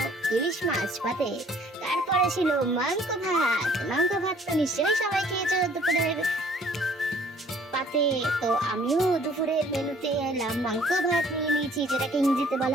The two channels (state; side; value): normal; both; correlation 0.58